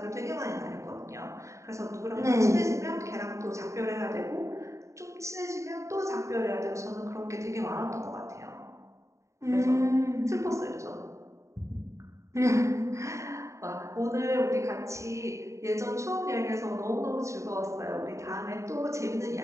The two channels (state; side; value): late; left; 0.14 ms